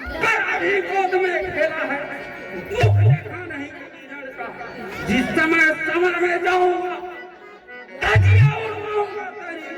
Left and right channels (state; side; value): identical; both; correlation 1.00